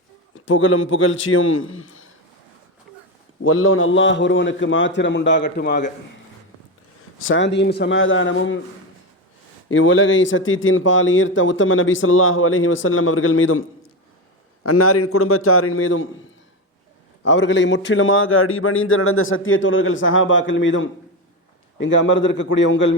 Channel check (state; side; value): normal; both; correlation 0.15